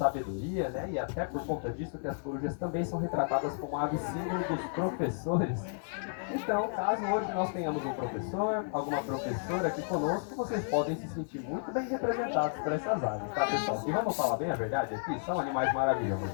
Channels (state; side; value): silent; right; digital silence